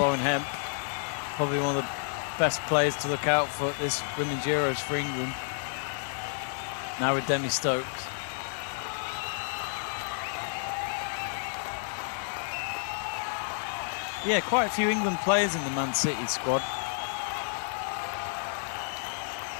Hemp, probably one of the best players to look out for at this Women's Euros for England. Now with Demi Stokes. Yeah, quite a few England players in the Man City squad.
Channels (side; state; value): right; silent; digital silence